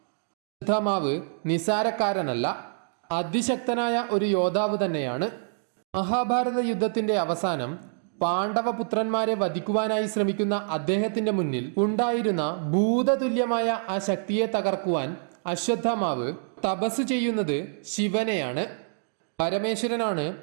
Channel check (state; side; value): silent; left; digital silence